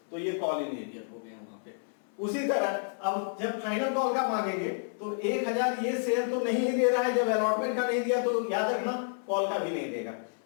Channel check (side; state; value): right; silent; 58 dB below the other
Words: तो ये कॉल इन एरियर हो गया वहां पे। उसी तरह अब जब फाइनल कॉल का मांगेंगे तो 1000 ये शेयर तो नहीं दे रहा है, जब अलॉटमेंट का नहीं दिया तो याद रखना कॉल का भी नहीं देगा।